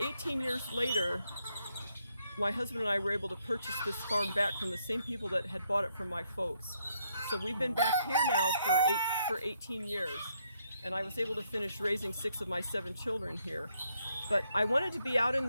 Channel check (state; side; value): inverted; both; correlation -0.74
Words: years later, my husband and I were able to purchase this farm back from the same people that had bought it from my folks. So we've been back here now for 18 years, and I was able to finish raising 6 of my 7 children here. But I wanted to be out in